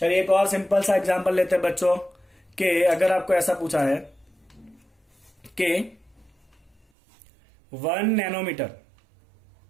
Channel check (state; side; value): drops out; left; at 6.9 s